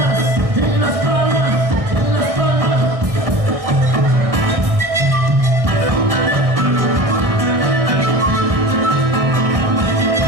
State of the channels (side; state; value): left; late; 1.6 ms